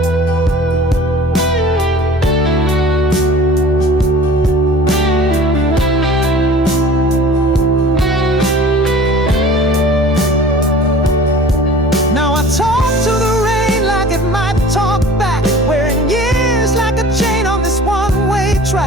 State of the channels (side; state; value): both; normal; correlation 0.45